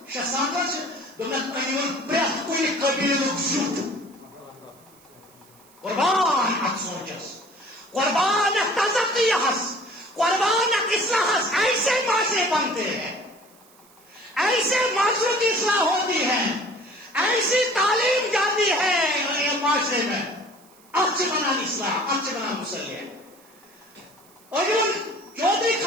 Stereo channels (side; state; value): right; noise; hiss, 28 dB below the sound